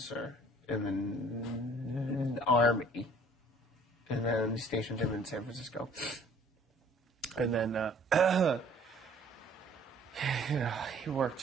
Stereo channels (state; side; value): normal; both; correlation 0.55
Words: in the Army. And then he stationed him in San Francisco. And then he worked